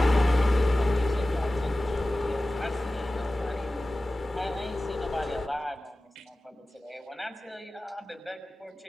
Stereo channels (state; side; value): normal; both; correlation 0.96